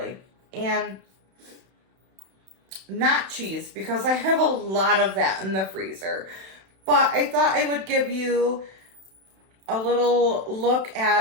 And not cheese, because I have a lot of that in the freezer. But I thought I would give you a little look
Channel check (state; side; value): late; left; 31 ms